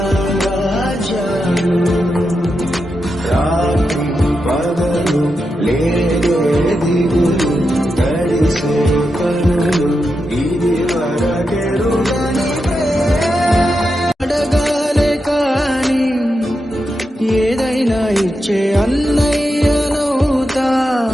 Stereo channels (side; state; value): both; normal; correlation 0.87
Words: రాత్రి పగలు లేదే దిగులు, గడిసే కనులు ఇది వరకెరుగని అడగాలే కాని ఏదైనా ఇచ్చే అన్నయ్యనవుతా,